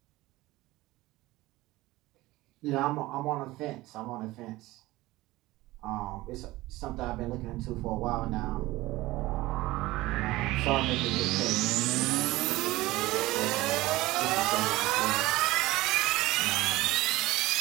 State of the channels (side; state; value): left; quieter; 18.7 dB